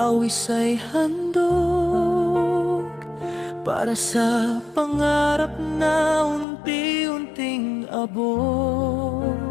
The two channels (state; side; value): drops out; right; at 6.5 s